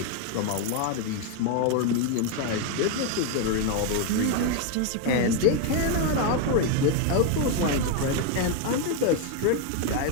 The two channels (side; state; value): both; different; correlation 0.01